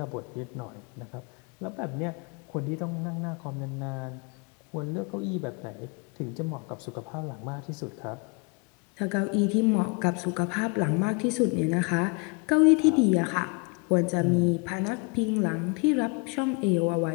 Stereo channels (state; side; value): quieter; right; 31.8 dB